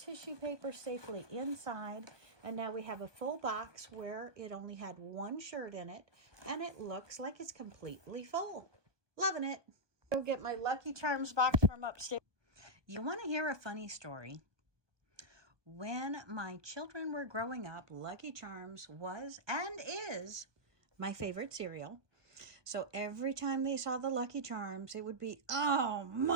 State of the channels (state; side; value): late; left; 1.2 ms